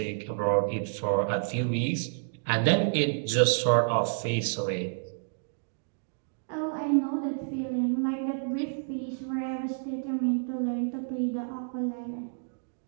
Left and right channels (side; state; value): left; silent; digital silence